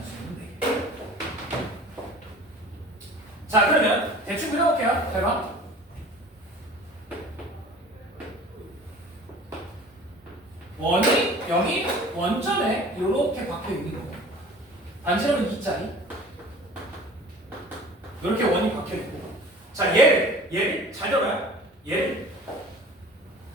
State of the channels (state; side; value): normal; both; correlation 0.44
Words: 4개. 자, 그러면 대충 그려볼게요. 잘 봐. 원이 0이 원점에 이렇게 박혀 있는 거. 반지름은 2짜리. 이렇게 원이 박혀 있고. 자, 얘를 잘 들어요. 얘를